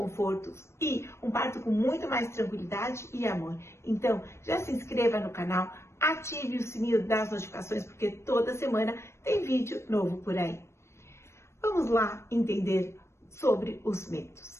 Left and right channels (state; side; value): late; right; 0.13 ms